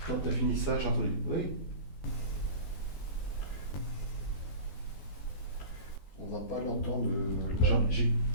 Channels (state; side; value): late; right; 14 ms